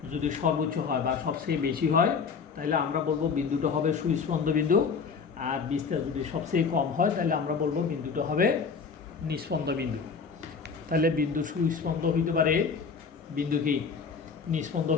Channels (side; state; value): right; quieter; 5.6 dB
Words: যদি সর্বোচ্চ হয় বা সবচেয়ে বেশি হয় তাহলে আমরা বলবো বিন্দুটা হবে সুস্পন্দ বিন্দু, আর বিস্তার যদি সবচেয়ে কম হয় তাহলে আমরা বলবো বিন্দুটা হবে নিস্পন্দ বিন্দু। তাহলে বিন্দু সুস্পন্দ হইতে পারে, বিন্দু কি নিস্পন্দ